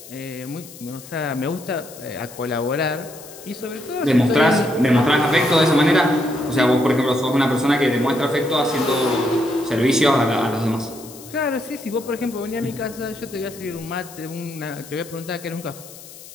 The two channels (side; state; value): left; noise; hiss, 17 dB below the sound